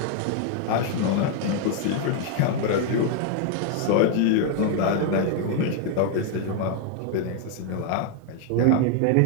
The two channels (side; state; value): both; different; correlation 0.00